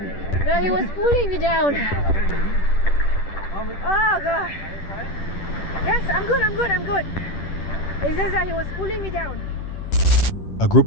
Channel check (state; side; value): late; right; 10 ms